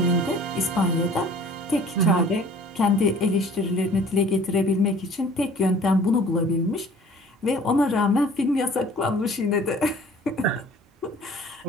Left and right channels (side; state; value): both; normal; correlation 0.50